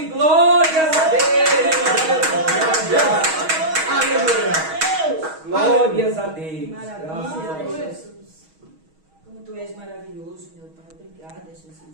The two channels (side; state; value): left; late; 6.3 ms